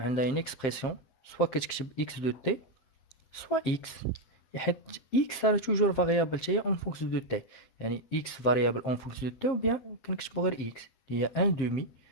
une expression soit كتكتب x de t soit x حيت x راه toujours variable حتى en fonction de t. يعني x variable en fonction de t ou bien كنكتبو غير x اللي هي 1 demi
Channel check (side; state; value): right; late; 7.6 ms